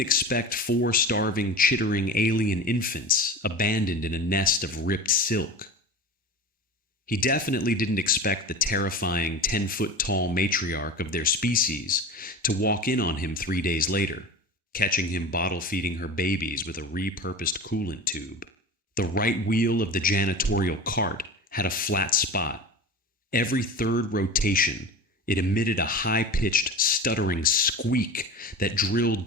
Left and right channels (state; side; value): normal; both; correlation 0.32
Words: 4 starving, chittering alien infants abandoned in a nest of ripped silk. He definitely didn't expect the terrifying 10-foot-tall matriarch of their species to walk in on him 3 days later, catching him bottle-feeding her babies with a repurposed coolant tube. The right wheel of the janitorial cart had a flat spot. Every third rotation, it emitted a high-pitched, stuttering squeak that drilled